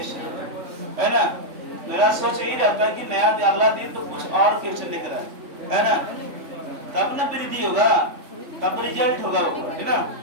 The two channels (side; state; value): left; late; 3.5 ms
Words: है ना। मेरा सोच यही रहता है कि नया अगला दिन तो कुछ और क्वेश्चन लेकर आए, है ना, तब ना वृद्धि होगा, तब रिजल्ट होगा वो, है ना।